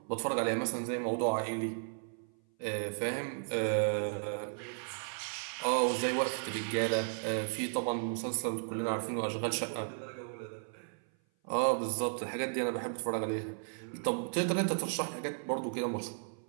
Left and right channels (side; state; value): left; silent; 55 dB below the other